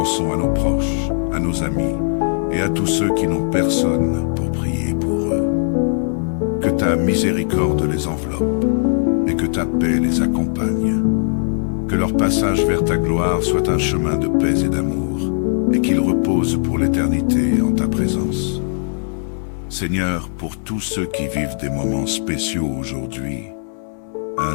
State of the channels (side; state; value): right; silent; 66 dB below the other